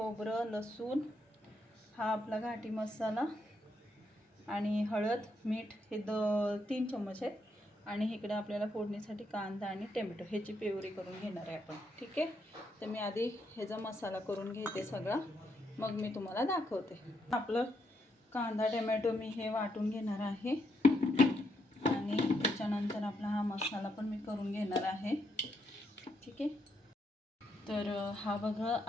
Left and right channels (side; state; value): both; normal; correlation 0.78